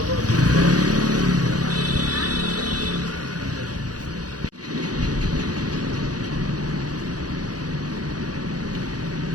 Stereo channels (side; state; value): left; late; 0.68 ms